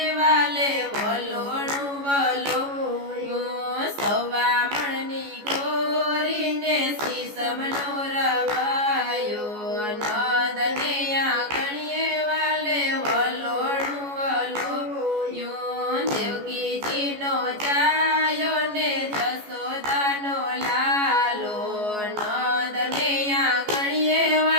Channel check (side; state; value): left; late; 14 ms